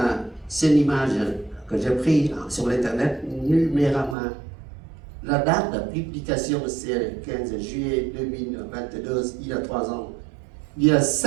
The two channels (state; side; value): drops out; left; at 4.2 s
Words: c'est une image que j'ai prise sur l'internet numéralement. La date de publication, c'est le 15 juillet 2022, il y a 3 ans. Il y a